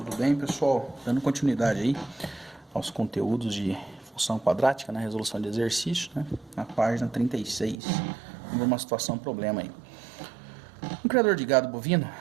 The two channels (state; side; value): drops out; left; at 7.8 s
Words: bem, pessoal? Dando continuidade aí aos conteúdos de função quadrática na resolução de exercício, né? Na página 36, uma situação, problema aí. Um criador de gado bovino